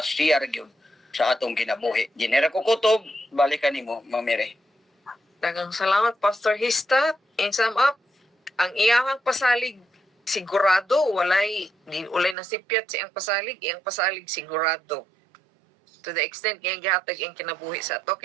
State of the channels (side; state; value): left; drops out; at 12.4 s